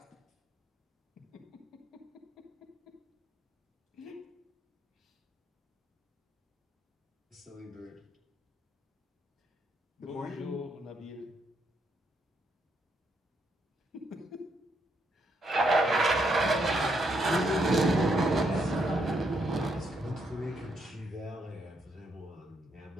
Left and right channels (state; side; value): normal; both; correlation 0.76